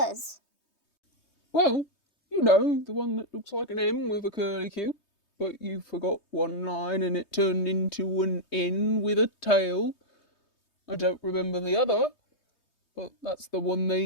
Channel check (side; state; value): right; late; 3.2 ms